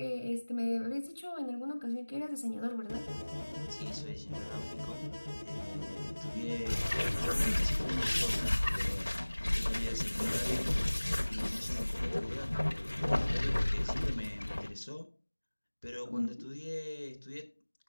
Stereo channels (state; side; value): inverted; both; correlation -1.00